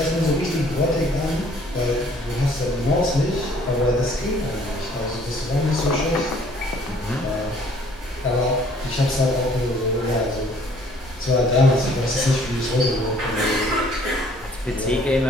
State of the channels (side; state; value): both; normal; correlation 0.58